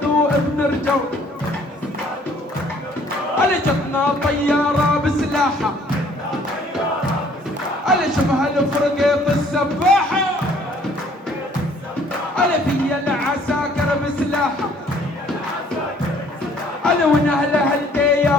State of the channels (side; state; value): both; normal; correlation 0.59